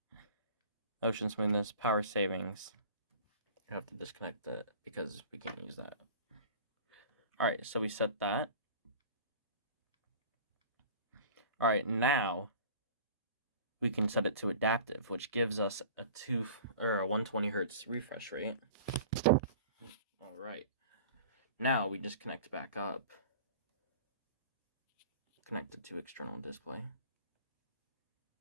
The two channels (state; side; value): inverted; both; correlation -0.41